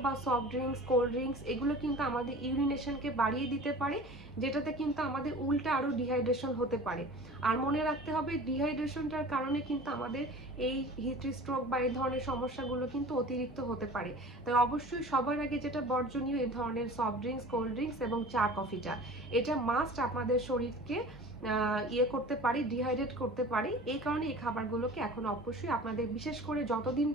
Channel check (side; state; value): both; normal; correlation 0.41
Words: বা সফট ড্রিঙ্কস, কোল্ড ড্রিঙ্কস এগুলো কিন্তু আমাদের ইউরিনেশনকে বাড়িয়ে দিতে পারে, যেটাতে কিন্তু আমাদের উল্টা আরও ডিহাইড্রেশন হতে পারে। আর মনে রাখতে হবে ডিহাইড্রেশনটার কারণে কিন্তু আমাদের এই হিট স্ট্রোক বা এই ধরনের সমস্যাগুলো কিন্তু অতিরিক্ত হতে পারে। তাই অবশ্যই সবার আগে যেটা বর্জনীয়, এই ধরনের সফট ড্রিঙ্কস, কোল্ড ড্রিঙ্কস এবং চা, কফিটা এটা মাস্ট আপনাদের শরীরকে করতে পারি, ডিহাইড্রেট করতে পারি। এই কারণে এই খাবারগুলোকে এখন অবশ্যই আপনাদের, বিশেষ করে যতদিন